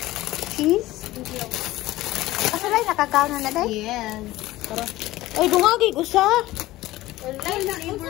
Cheese? Asa lang nakakaon na day? Yes. Pero, Oy, dungagi ko sa. wala na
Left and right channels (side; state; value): right; quieter; 17.0 dB